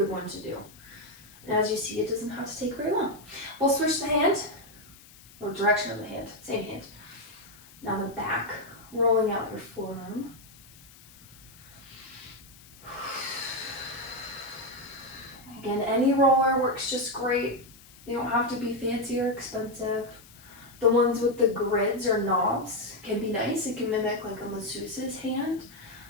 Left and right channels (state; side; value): noise; left; hiss, 23 dB below the sound